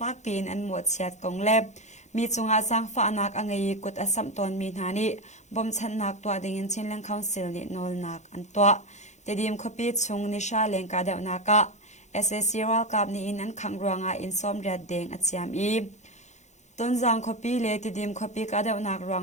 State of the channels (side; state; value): right; late; 0.34 ms